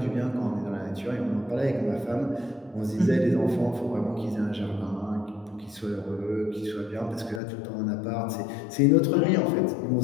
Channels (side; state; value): right; drops out; at 7.4 s